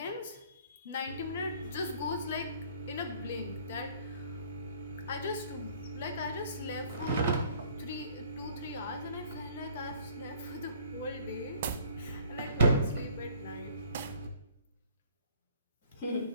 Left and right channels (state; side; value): inverted; both; correlation -0.55